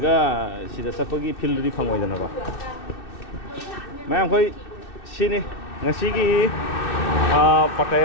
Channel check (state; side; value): late; right; 2.6 ms